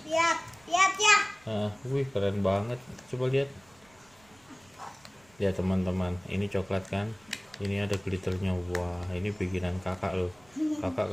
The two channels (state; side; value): noise; right; rumble, 29 dB below the sound